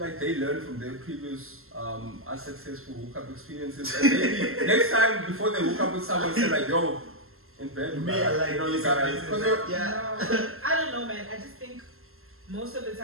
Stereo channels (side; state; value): left; late; 0.62 ms